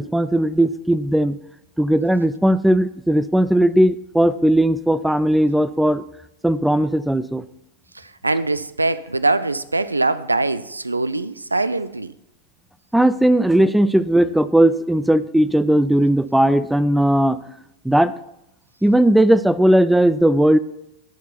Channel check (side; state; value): both; normal; correlation 0.79